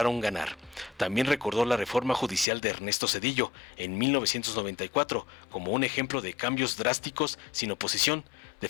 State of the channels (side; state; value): right; drops out; at 2.5 s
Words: ganar. También recordó la reforma judicial de Ernesto Zedillo en 1994 como un ejemplo de cambios drásticos sin oposición.